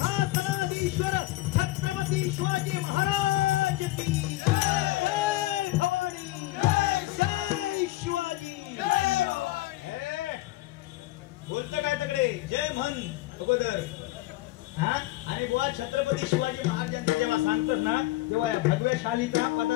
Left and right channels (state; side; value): quieter; right; 17.9 dB